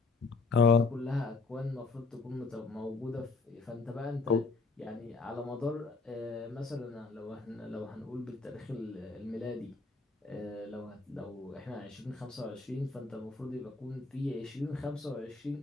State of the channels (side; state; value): right; quieter; 4.0 dB